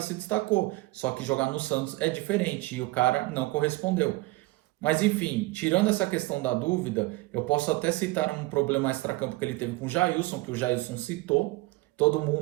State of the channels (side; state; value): left; quieter; 21.0 dB